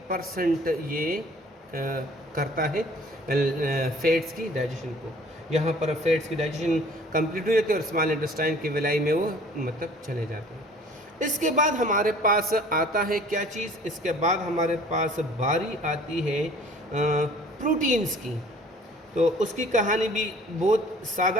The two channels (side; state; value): both; normal; correlation 0.51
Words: ये करता है फैट्स की डाइजेशन को। यहाँ पर फैट्स की डाइजेशन कंप्लीट हो जाती है और स्मॉल इंटेस्टाइन की विलाई में वो मतलब चले जाते हैं। इसके बाद हमारे पास आता है क्या चीज़, इसके बाद हमारे पास बारी आती है प्रोटीन्स की। तो उसकी कहानी भी बहुत